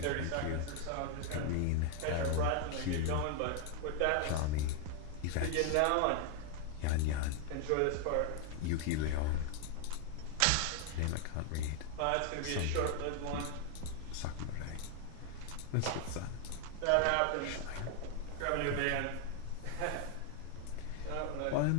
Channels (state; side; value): different; both; correlation 0.00